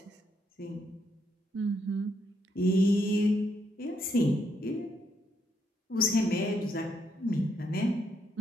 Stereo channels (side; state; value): both; normal; correlation 0.76